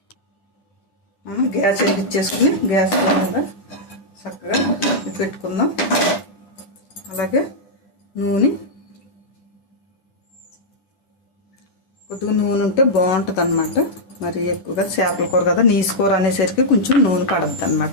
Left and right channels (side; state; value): right; late; 10 ms